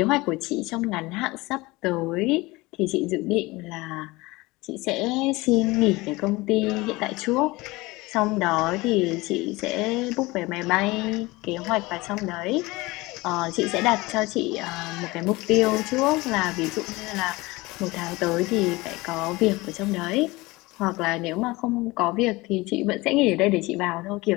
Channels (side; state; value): right; quieter; 21.8 dB